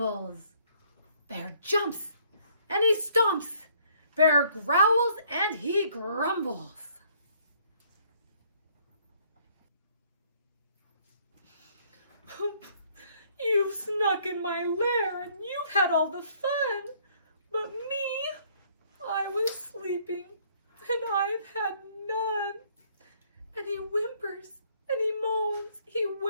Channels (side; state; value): both; inverted; correlation -0.63